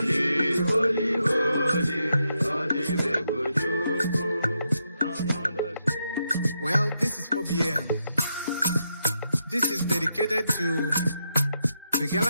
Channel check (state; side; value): inverted; both; correlation -0.82